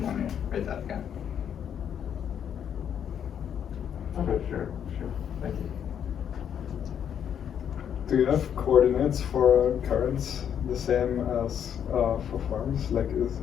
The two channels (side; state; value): right; quieter; 8.8 dB